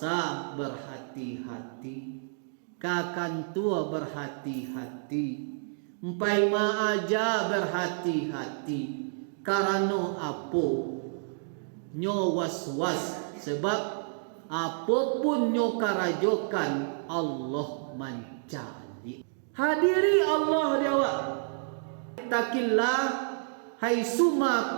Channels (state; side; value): silent; left; digital silence